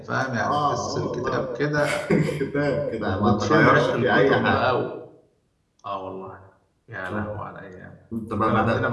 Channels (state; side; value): identical; both; correlation 1.00